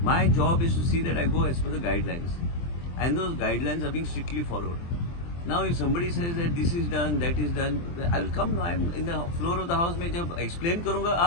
My job is to see that I go as per the guidelines, and those guidelines are being strictly followed. Now, if somebody says that this is done, that is done, I will come. I am in the floor of the house. मैं जब explain करूँगा,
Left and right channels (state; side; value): late; right; 23 ms